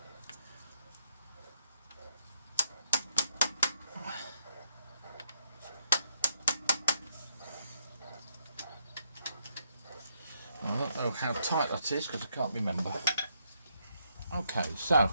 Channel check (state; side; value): inverted; both; correlation -0.74